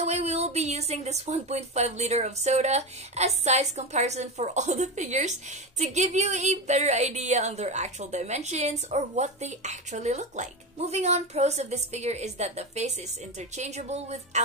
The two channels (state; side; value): normal; both; correlation 0.19